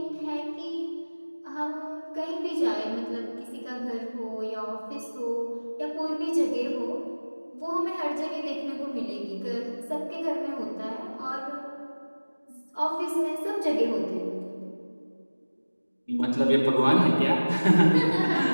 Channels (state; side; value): inverted; both; correlation -1.00